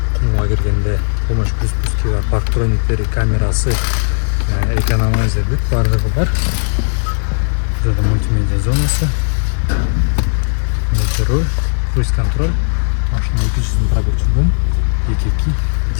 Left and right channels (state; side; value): silent; right; digital silence